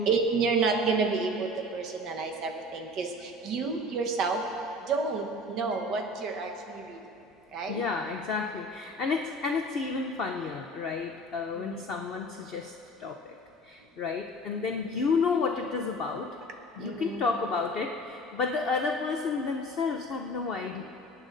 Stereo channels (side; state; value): both; normal; correlation 0.40